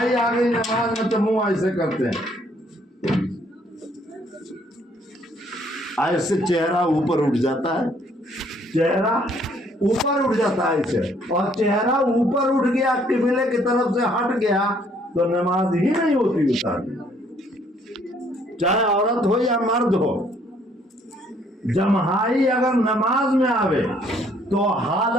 آ گئی نماز میں تو منہ ایسے کرتے ہیں، ایسے چہرہ اوپر اٹھ جاتا ہے، چہرہ اوپر اٹھ جاتا ہے ایسے، اور چہرہ اوپر اٹھ گیا قبلے کی طرف سے ہٹ گیا تو نماز ہی نہیں ہوتی اتار، چاہے عورت ہو یا مرد ہو۔ جماعی اگر نماز میں آوے تو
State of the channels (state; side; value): normal; both; correlation 0.64